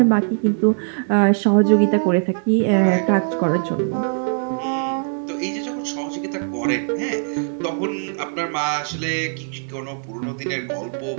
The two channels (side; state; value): left; silent; 64 dB below the other